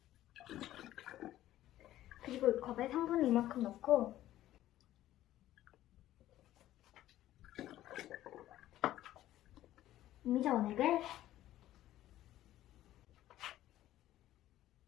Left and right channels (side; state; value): right; quieter; 13.8 dB